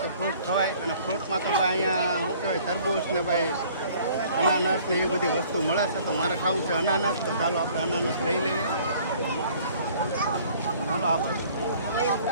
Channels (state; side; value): inverted; both; correlation -0.55